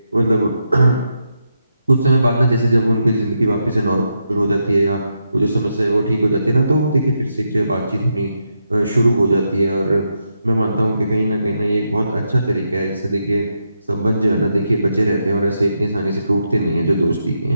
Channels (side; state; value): both; inverted; correlation -0.83